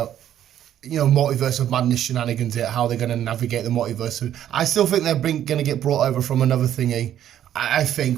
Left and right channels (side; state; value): left; quieter; 11.0 dB